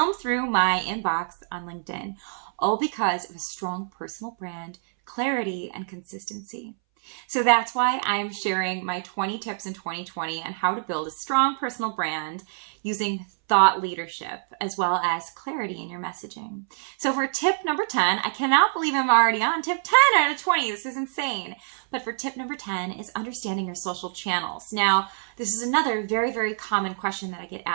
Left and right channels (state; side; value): silent; left; 61 dB below the other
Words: through my inbox on LinkedIn, all because of a strong personal brand, clarity, and consistency. So that's why I'm sharing my 20 tips in 2020 on how to build a strong personal brand using thought leadership as well as clarity in your messaging. So for tip number 10, I cannot believe I'm already on tip 10 out of 20. This is insane. But for tip number 10 is understanding your social channels. Now, this is another very, very common question that I get